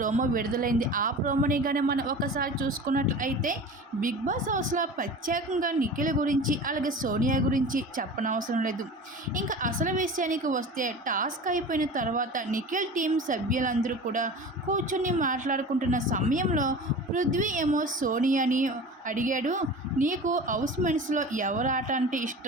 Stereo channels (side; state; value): both; normal; correlation 0.35